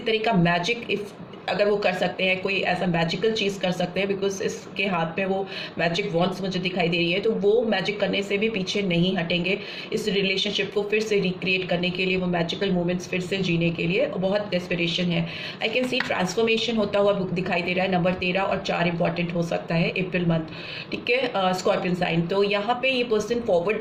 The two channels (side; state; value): both; identical; correlation 1.00